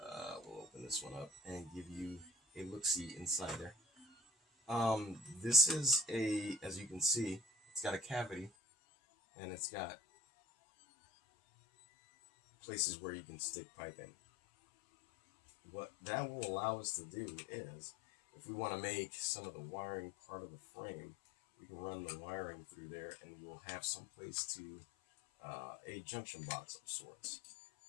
We'll open this one up and give you a look-see inside there. This is as you can see, it's got a cavity and it's got places where you can stick pipe in. What that will allow us to do is, if we want to make some of the wiring part of the frame, we can run the wiring through there and we'll have some place to a junction box of sorts.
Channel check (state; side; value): drops out; right; at 8.5 s